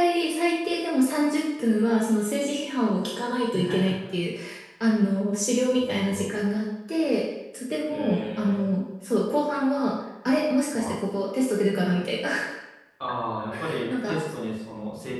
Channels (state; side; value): identical; both; correlation 1.00